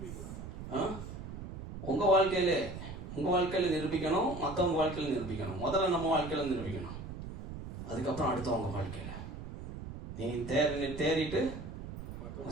உங்க வாழ்க்கையில நிரூபிக்கணும், மற்றவங்க வாழ்க்கையில நிரூபிக்கணும். முதல்ல நம்ம வாழ்க்கையில நிரூபிக்கணும், அதுக்கப்புறம் அடுத்தவங்க வாழ்க்கையில. நீ தேறிட்டு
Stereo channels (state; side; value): noise; right; rumble, 9 dB below the sound